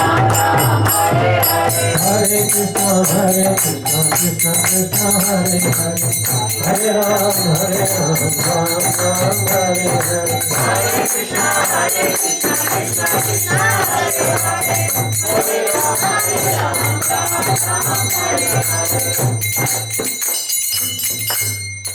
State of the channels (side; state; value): both; identical; correlation 1.00